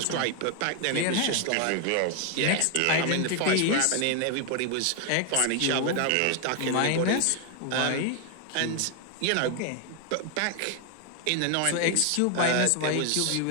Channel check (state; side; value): different; both; correlation 0.01